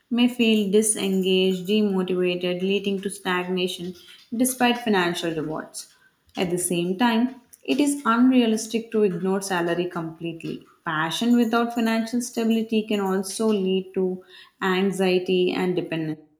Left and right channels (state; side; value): identical; both; correlation 1.00